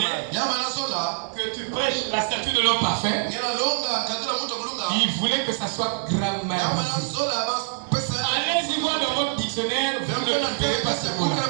que tu prêches la statue de l'homme parfait. Il voulait que ça soit grammarisé. Allez-y voir dans votre dictionnaire, vous ne trouverez pas ce mot-là.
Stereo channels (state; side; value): silent; left; digital silence